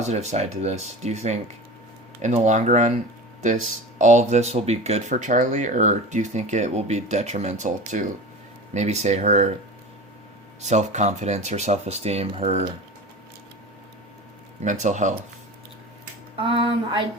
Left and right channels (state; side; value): normal; both; correlation 0.32